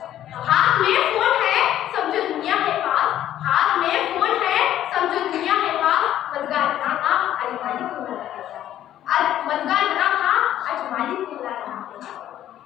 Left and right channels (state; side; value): quieter; right; 12.0 dB